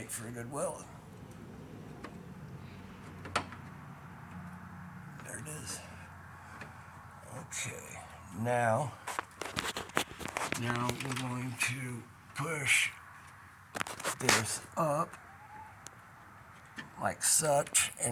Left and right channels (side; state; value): both; identical; correlation 1.00